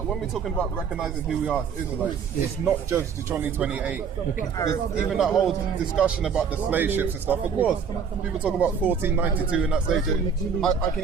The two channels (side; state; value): left; quieter; 6.4 dB